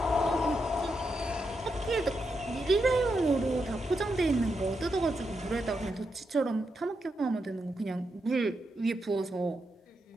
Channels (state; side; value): normal; both; correlation 0.84